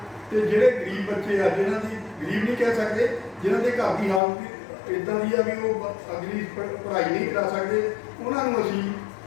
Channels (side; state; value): right; drops out; at 4.2 s